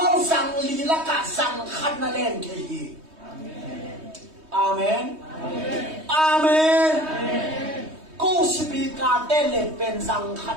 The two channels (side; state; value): left; late; 3.2 ms